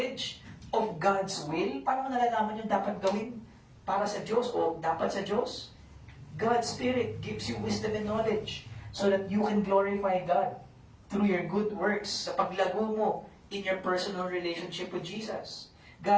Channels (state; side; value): identical; both; correlation 1.00